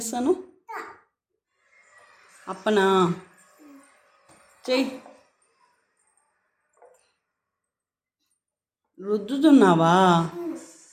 అప్పనా చెయ్యి. రుద్దుతున్నావా?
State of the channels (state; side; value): identical; both; correlation 1.00